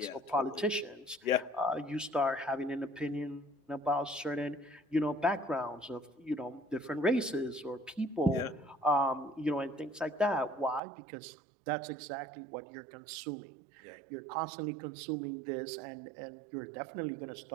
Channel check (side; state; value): left; drops out; at 10.8 s